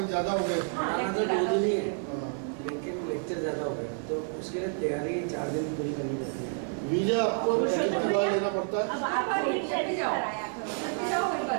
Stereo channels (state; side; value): silent; left; 58 dB below the other